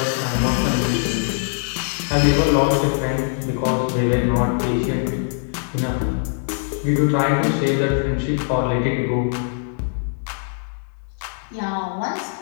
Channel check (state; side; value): silent; right; 64 dB below the other